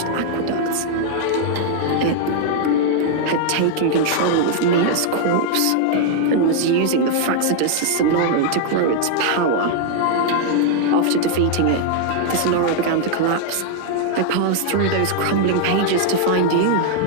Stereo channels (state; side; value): different; both; correlation 0.00